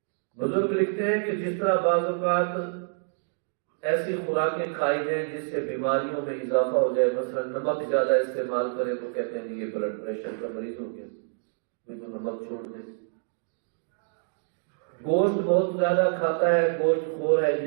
بزرگ لکھتے ہیں کہ جس طرح بعض اوقات ایسی خوراکیں کھائی جائیں جس سے بیماریوں میں اضافہ ہو جائے، مثلا نمک زیادہ استعمال کریں تو کہتے ہیں یہ بلڈ پریشر کا مریض ہو گیا، تو نمک چھوڑ دے۔ گوشت بہت زیادہ کھاتا ہے، گوشت خور ہے،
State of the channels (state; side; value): silent; left; digital silence